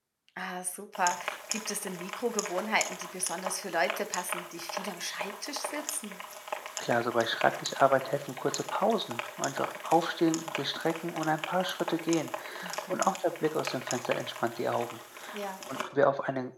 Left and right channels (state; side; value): identical; both; correlation 1.00